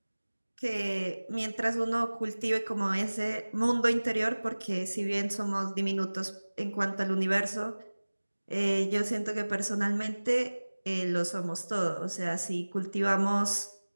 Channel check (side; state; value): both; inverted; correlation -1.00